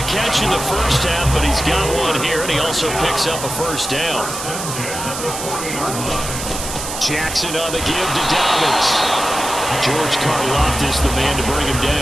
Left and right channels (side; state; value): right; noise; hiss, 7 dB below the sound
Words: catch in the first half, but he's got one here, and he also picks up a first down. Jackson on the give to Dobbins. George Karlaftis, the man to bring him